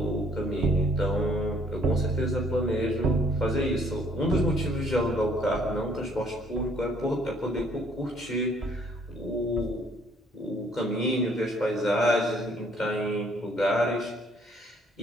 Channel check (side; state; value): both; normal; correlation 0.63